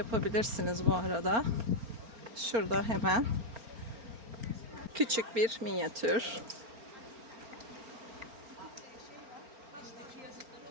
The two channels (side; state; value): left; late; 4.4 ms